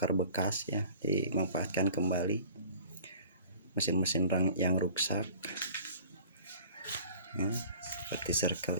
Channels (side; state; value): both; inverted; correlation -0.47